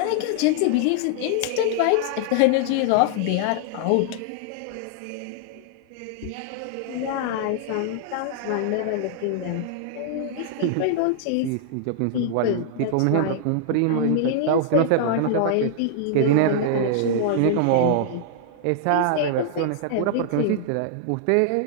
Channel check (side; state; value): both; different; correlation -0.01